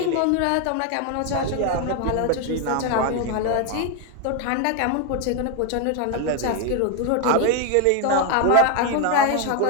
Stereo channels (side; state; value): both; different; correlation 0.01